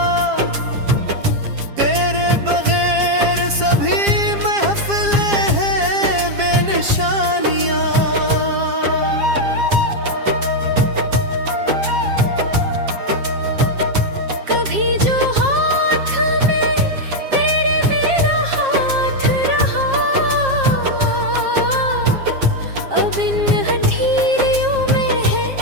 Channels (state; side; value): late; left; 7.4 ms